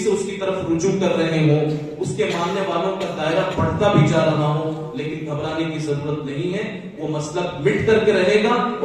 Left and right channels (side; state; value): both; identical; correlation 1.00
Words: سے اس کی طرف رجوع کر رہے ہوں، اس کے ماننے والوں کا دائرہ بڑھتا بھی جا رہا ہو، لیکن گھبرانے کی ضرورت نہیں ہے. وہ مسلک مٹ کر کے رہے گا